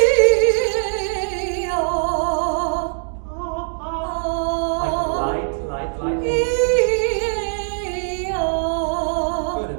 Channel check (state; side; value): silent; left; digital silence